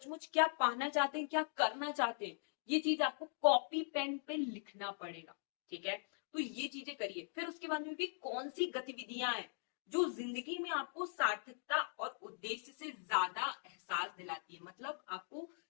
क्या पाना चाहते हैं, क्या करना चाहते हैं, ये चीज आपको कॉपी पेन पे लिखना पड़ेगा। ठीक है, तो ये चीजें करिए। फिर उसके बाद में भी कौन सी गतिविधियां हैं जो जिंदगी में आपको सार्थकता और उद्देश्य से ज्यादा एहसास दिलाती है। मतलब आपको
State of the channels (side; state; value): right; silent; digital silence